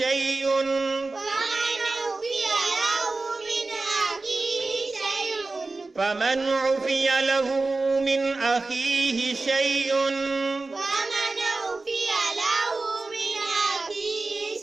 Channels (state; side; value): quieter; left; 3.5 dB